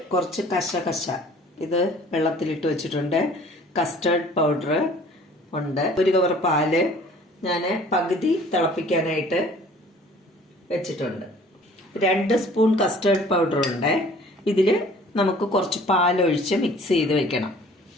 കുറച്ച് കശ ഇത് വെള്ളത്തിലിട്ട് വെച്ചിട്ടുണ്ട്. കസ്റ്റർഡ് പൗഡർ ഉണ്ട്. ഒരു കവർ പാല് ഞാൻ പകുതി തിളപ്പിക്കാനായിട്ട് വെച്ചിട്ടുണ്ട്. 2 സ്പൂൺ കസ്റ്റർഡ് പൗഡർ ഉണ്ട്. ഇതിൽ നമുക്ക് കുറച്ച് പാലൊഴിച്ച് മിക്സ് ചെയ്ത് വെക്കണം.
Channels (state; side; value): normal; both; correlation 0.51